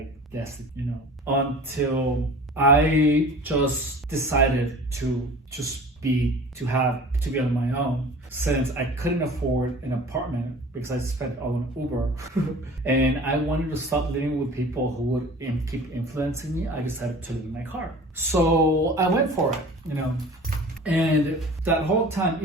destitute, until I just decided to be on my own, since I couldn't afford an apartment because I spent all on Uber. And I wanted to stop living with people who would keep influencing me. I decided to live in my car. So I went for it, And that whole time,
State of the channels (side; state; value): both; normal; correlation 0.42